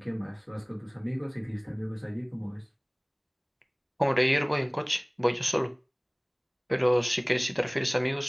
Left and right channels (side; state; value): both; identical; correlation 1.00